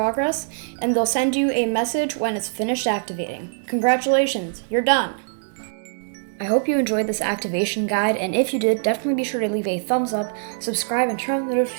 and they'll send you a message when it's finished activating. Congratulations, you're done. I hope you enjoyed this activation guide, and if you did, definitely be sure to leave a thumbs up, subscribe, and turn on the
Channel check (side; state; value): left; silent; digital silence